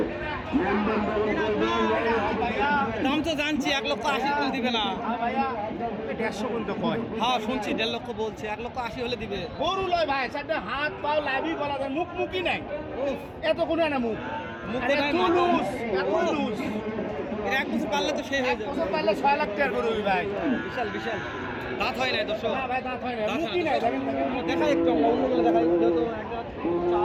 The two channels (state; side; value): identical; both; correlation 1.00